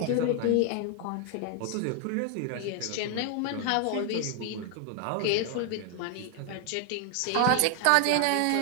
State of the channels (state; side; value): different; both; correlation 0.00